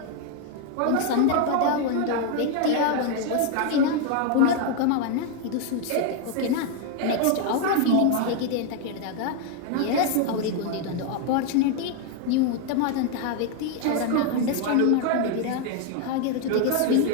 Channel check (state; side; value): different; both; correlation 0.01